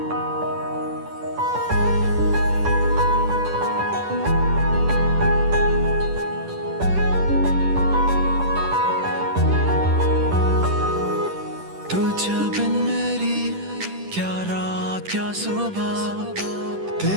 तू जब बिन मेरी क्या रात क्या सुबह,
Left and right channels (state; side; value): late; left; 10 ms